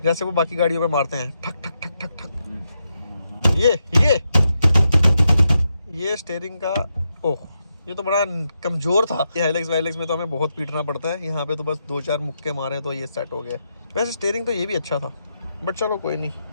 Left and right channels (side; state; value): both; inverted; correlation -0.84